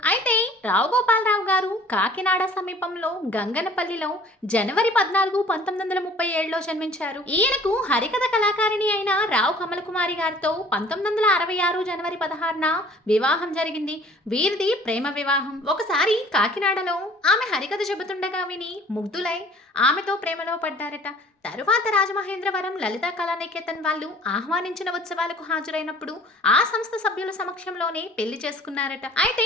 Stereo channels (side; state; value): both; normal; correlation 0.51